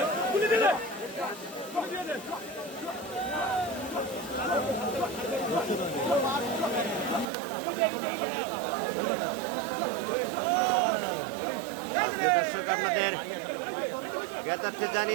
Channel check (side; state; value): left; drops out; at 7.2 s